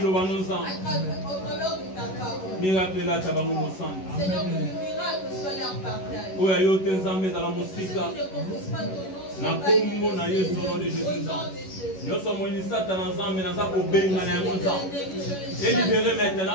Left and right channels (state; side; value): late; right; 11 ms